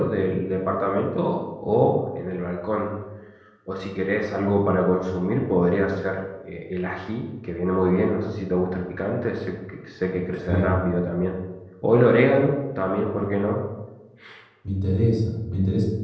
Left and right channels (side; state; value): both; identical; correlation 1.00